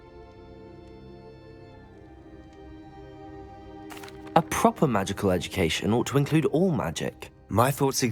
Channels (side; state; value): both; identical; correlation 1.00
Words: A proper magical education ought to include all magic. My thoughts